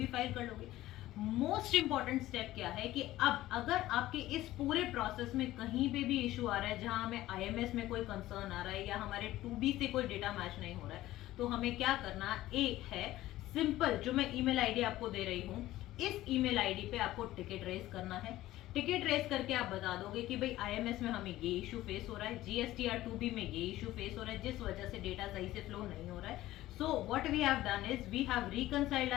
फाइल कर लोगे। मोस्ट इंपॉर्टेंट स्टेप क्या है कि अब अगर आपके इस पूरे प्रोसेस में कहीं पे भी इशू आ रहा है जहां हमें आईएमएस में कोई कंसर्न आ रहा है या हमारे 2B से कोई डेटा मैच नहीं हो रहा है तो हमें क्या करना है सिंपल, जो मैं ईमेल आईडी आपको दे रही हूँ इस ईमेल आईडी पे आपको टिकट रेज करना है। टिकट रेज करके आप बता दोगे कि भाई आईएमएस में हमें ये इशू फेस हो रहा है, जीएसटीआर 2B में ये इशू फेस हो रहा है जिस वजह से डेटा सही से फ्लो नहीं हो रहा है। So what we have done is we have reconciled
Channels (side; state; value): right; quieter; 15.7 dB